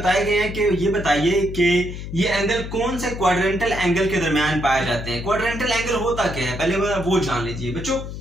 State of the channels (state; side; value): noise; left; hum, 8 dB below the sound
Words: गए हैं कि ये बताइए कि ये एंगल कौन से क्वाड्रेंटल एंगल के दरमियान पाए जाते हैं। क्वाड्रेंटल एंगल होता क्या है पहले वो जान लीजिए बच्चों।